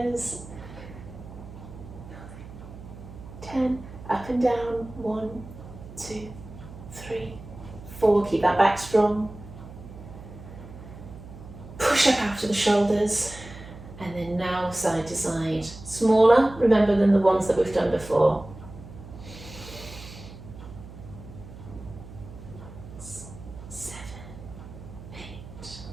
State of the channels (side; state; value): right; noise; hum, 15 dB below the sound